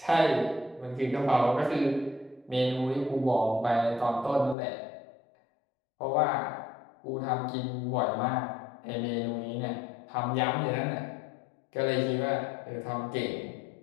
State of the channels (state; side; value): drops out; right; at 4.5 s